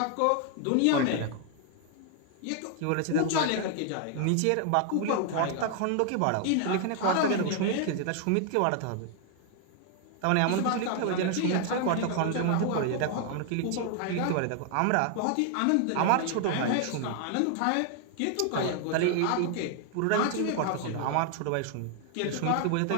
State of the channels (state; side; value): different; both; correlation 0.00